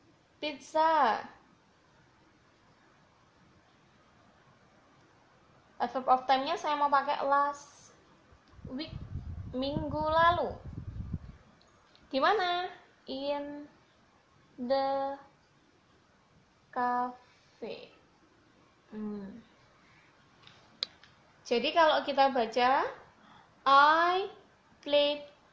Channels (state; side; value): identical; both; correlation 1.00